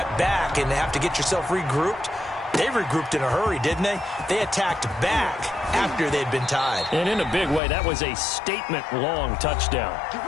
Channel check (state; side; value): drops out; right; at 7.6 s